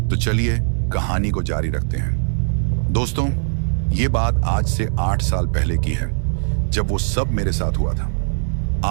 तो चलिए कहानी को जारी रखते हैं। दोस्तों, ये बात आज से 8 साल पहले की है, जब वो सब मेरे साथ हुआ था।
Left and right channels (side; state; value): left; silent; digital silence